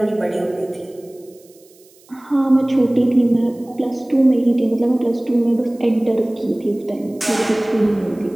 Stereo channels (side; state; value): right; noise; hiss, 29 dB below the sound